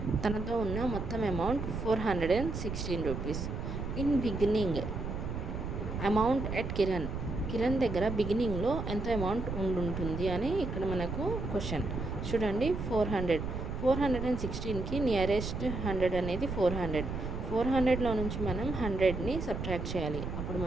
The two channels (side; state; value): right; noise; rumble, 5 dB below the sound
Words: తనతో ఉన్న మొత్తం amount 416 rupees. In beginning amount at Kiran దగ్గర బిగినింగ్లో ఎంత amount ఉండుంటుంది అని ఇక్కడ మనకు క్వశ్చన్. చూడండి, 416కి నియరెస్ట్ 100 అనేది 400. 400లో నుంచి మనం 100ని సబ్ట్రాక్ట్ చేయాలి. అప్పుడు